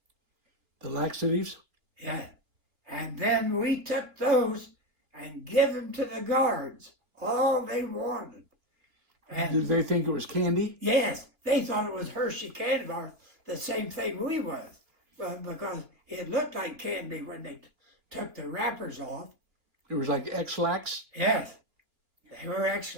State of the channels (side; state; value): left; late; 3.0 ms